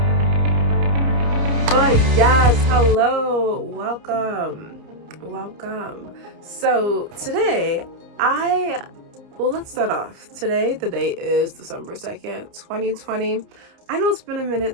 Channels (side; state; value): left; late; 29 ms